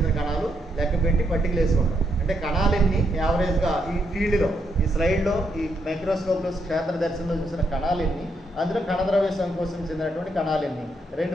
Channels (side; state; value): both; normal; correlation 0.78